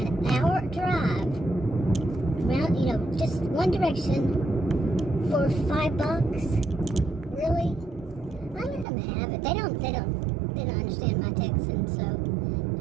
hour drive around, just one direction for $5? Really? I let them have it. They don't understand my Texan, so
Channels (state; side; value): drops out; left; at 8.8 s